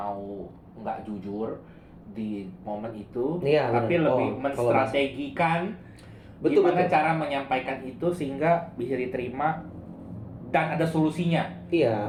nggak jujur di momen itu, tapi lebih menstrategikan gimana cara menyampaikan itu sehingga bisa diterima dan ada solusinya. Iya.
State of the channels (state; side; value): identical; both; correlation 1.00